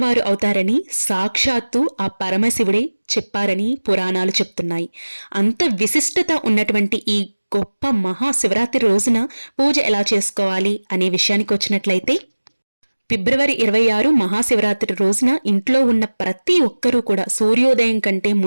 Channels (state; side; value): inverted; both; correlation -1.00